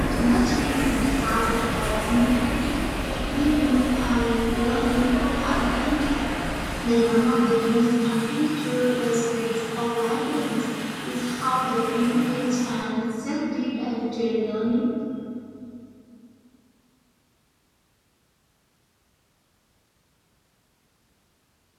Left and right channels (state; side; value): identical; both; correlation 1.00